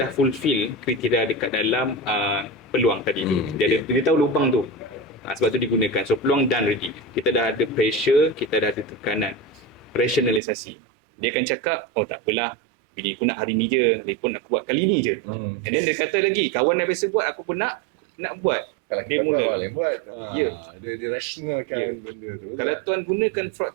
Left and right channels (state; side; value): drops out; left; at 10.4 s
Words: fulfill kriteria dekat dalam peluang tadi tu. Dia tahu lubang tu. Sebab tu digunakan. So peluang done already. Kita dah ada pressure, kita dah ada tekanan. Rationalisasi. Dia akan cakap, oh tak apalah, bini aku nak hari ni je, dia pun aku buat kali ni je. And then dia kata lagi, kawan yang biasa buat, aku pun nak buat. Kalau kita buat, orang lain buat. Dia rationalkan benda tu. Kalau tuan gunakan